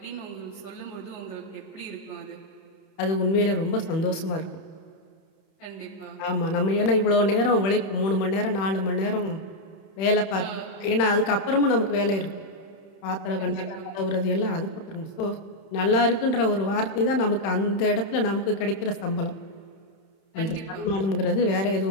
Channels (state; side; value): late; right; 31 ms